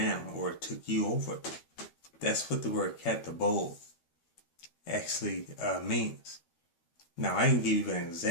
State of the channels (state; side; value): late; right; 13 ms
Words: or took you over. That's what the word katabole actually means. Now, I can give you an